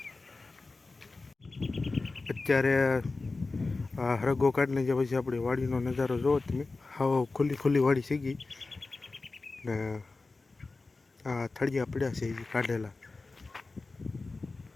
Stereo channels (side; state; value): right; quieter; 3.6 dB